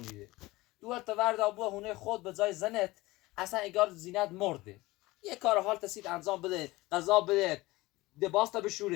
دوورت تا ورد آبوه هونه خود به جای زنت اصلا اگر زینت مرده یه کار حال تسید انجام بده غذا بده دباس تا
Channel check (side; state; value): right; quieter; 20.1 dB